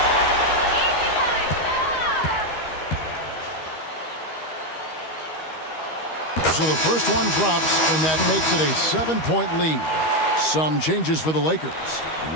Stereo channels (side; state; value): right; late; 13 ms